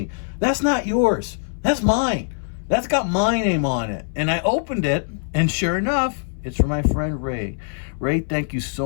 that's not yours. That's mine. That's got my name on it. And I opened it, and sure enough, it's for my friend Ray. Ray, thank you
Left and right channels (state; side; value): silent; right; 61 dB below the other